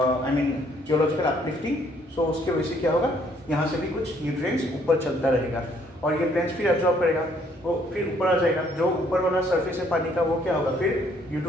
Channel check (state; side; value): normal; both; correlation 0.65